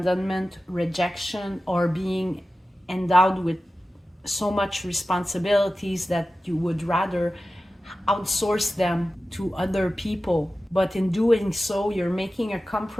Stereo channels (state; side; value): normal; both; correlation 0.94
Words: rejection, or being endowed with so much responsibilities that you would rather outsource them to other people. But in doing so, you're making a